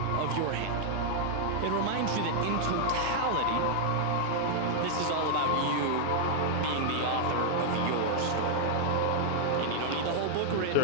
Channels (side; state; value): both; different; correlation -0.01